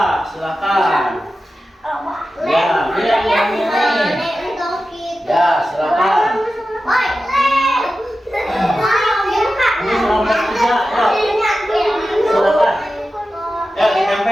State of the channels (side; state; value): both; normal; correlation 0.93